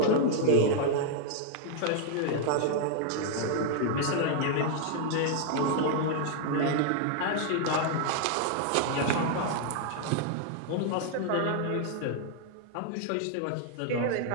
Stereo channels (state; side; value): different; both; correlation 0.00